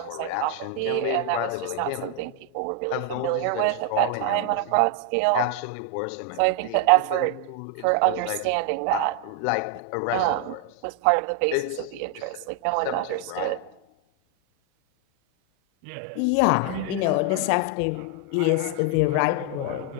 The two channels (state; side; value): different; both; correlation 0.00